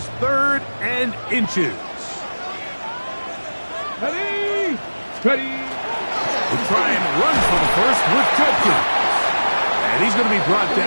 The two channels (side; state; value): both; inverted; correlation -1.00